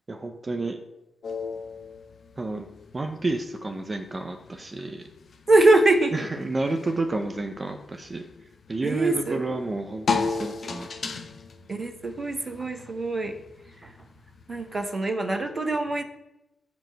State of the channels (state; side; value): normal; both; correlation 0.87